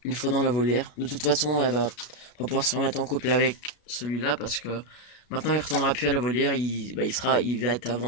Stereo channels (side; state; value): right; late; 33 ms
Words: une fois dans la volière. De toute façon, elle va pas pouvoir se remettre en couple avec celui-là parce que maintenant il retournera plus à la volière. Il va être à